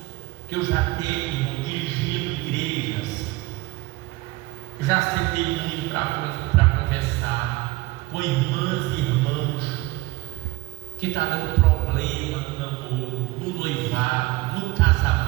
que eu já tenho dirigindo igrejas, já sentei muito para conversar com irmãs e irmãos que está dando problema no namoro, no noivado, no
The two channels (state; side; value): quieter; left; 20.6 dB